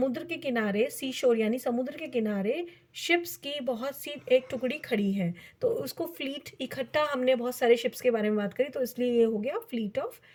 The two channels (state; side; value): identical; both; correlation 1.00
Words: के किनारे, सी शोर यानी समुद्र के किनारे, शिप्स की बहुत सी एक टुकड़ी खड़ी है, तो उसको फ्लीट, इकट्ठा हमने बहुत सारे शिप्स के बारे में बात करी, तो इसलिए ये हो गया फ्लीट ऑफ